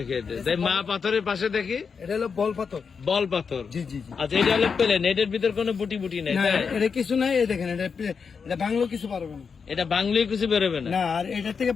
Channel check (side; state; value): right; quieter; 5.8 dB